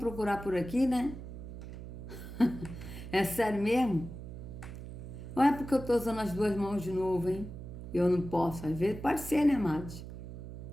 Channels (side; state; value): right; noise; hum, 11 dB below the sound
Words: por aqui, né? É sério mesmo? Ou é porque eu tô usando as duas mãos de novo, hein? Eu não posso, às vezes. Pode ser, né, amados?